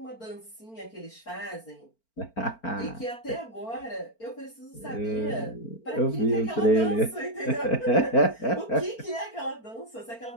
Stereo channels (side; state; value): right; late; 4.4 ms